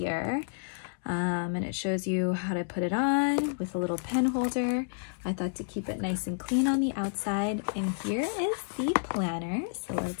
And it shows you how to put it on with a little pen holder. I thought to keep it nice and clean on the outside. And here is the planner. So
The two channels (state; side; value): silent; right; digital silence